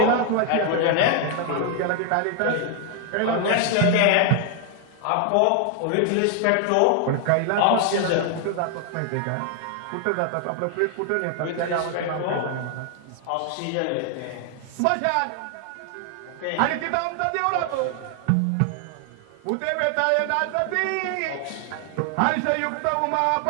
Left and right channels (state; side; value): different; both; correlation 0.00